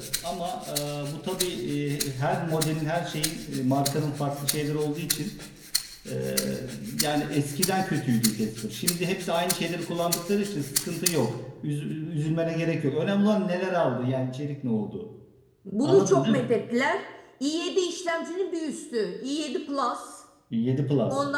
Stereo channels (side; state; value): both; identical; correlation 1.00